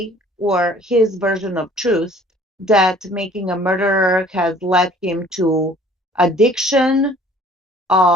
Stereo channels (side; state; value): both; normal; correlation 0.53